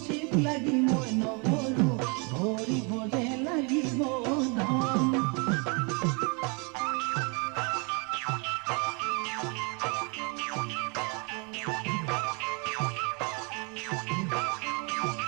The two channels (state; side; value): quieter; left; 33.3 dB